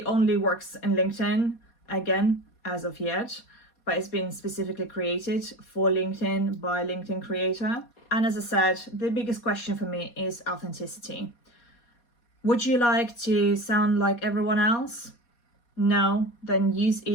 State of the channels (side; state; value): right; late; 4.2 ms